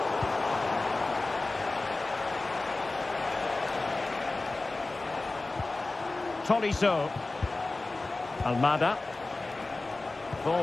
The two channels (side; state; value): right; quieter; 3.2 dB